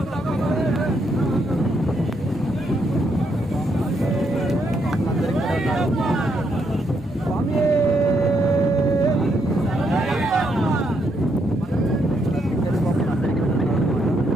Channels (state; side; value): normal; both; correlation 0.76